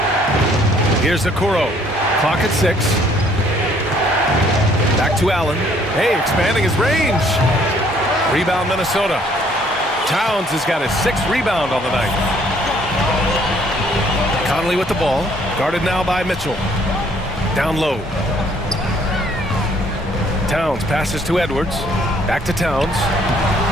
Here's Okoro. Clock at 6. Back to Allen. Hey, expanding his range. Rebound, Minnesota. Towns has got his 6th rebound on the night. Conley with the ball. Guarded now by Mitchell. Down low. Towns passes to Edwards. Back to Towns.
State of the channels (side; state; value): both; normal; correlation 0.63